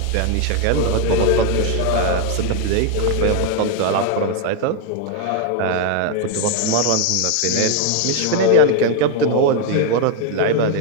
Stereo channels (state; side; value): different; both; correlation 0.01